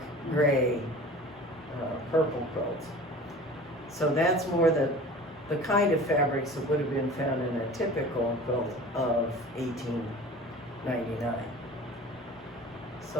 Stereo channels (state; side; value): normal; both; correlation 0.41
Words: gray, purple quilts. So that's more the kind of fabrics that would have been found in a typical quilt of $1,999.